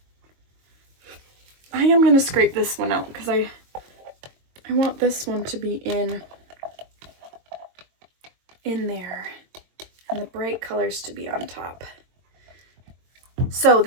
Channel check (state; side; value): late; left; 22 ms